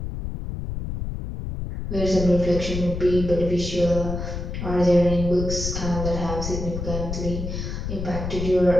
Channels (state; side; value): noise; left; rumble, 5 dB below the sound